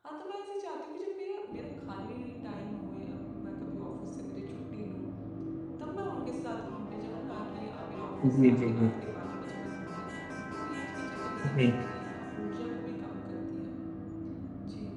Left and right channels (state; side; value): identical; both; correlation 1.00